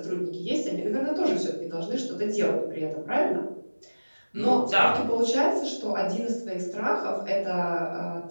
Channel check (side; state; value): both; inverted; correlation -1.00